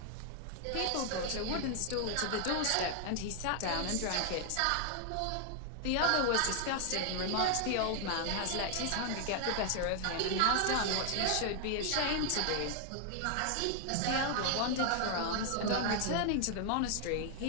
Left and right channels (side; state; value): both; different; correlation 0.00